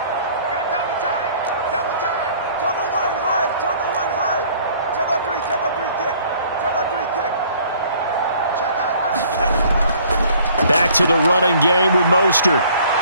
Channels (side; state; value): both; inverted; correlation -0.56